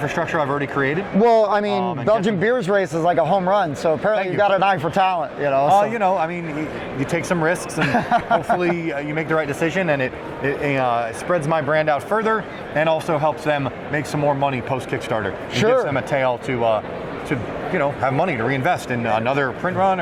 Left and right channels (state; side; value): identical; both; correlation 1.00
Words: I've already created. Well, I mean, Belgian Beers Race is like a home run, so apparently you've got an eye for talent, I mean, you take some risks, and hopefully you make the right decision, and it spreads my brand out further, and also helps them make some more money post Kickstarter. Sure. Gives them a tail to have money to reinvest in another print run